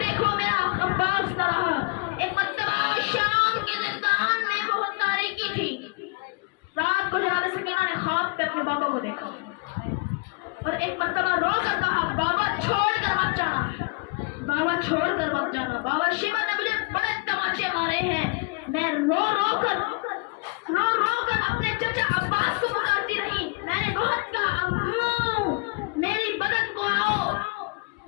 میرا عباس نہ رہا. ایک مرتبہ شام کے زندان میں بہت تاریکی تھی. رات کو جناب سکینہ نے خواب پہ اپنے بابا کو دیکھا اور ایک مرتبہ رو کر کہا بابا چھوڑ کر مت جانا, بابا چھوڑ کر مت جانا. بابا شیبہ نے مجھے بڑے تماچے مارے ہیں. میں رو رو کر اپنے چچا عباس کو پکارتی رہی. میں نے بہت کہا ابو میری بدن کو آؤ,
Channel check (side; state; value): right; quieter; 29.7 dB